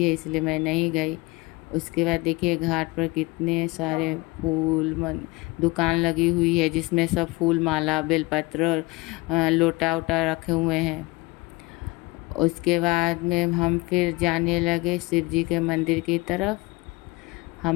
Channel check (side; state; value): right; quieter; 23.7 dB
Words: है, इसलिए मैं नहीं गई। उसके बाद देखिए घाट पर कितने सारे फूल दुकान लगी हुई है, जिसमें सब फूल माला बेलपत्र लोटा वोटा रखे हुए हैं। उसके बाद में हम फिर जाने लगे शिव जी के मंदिर की तरफ।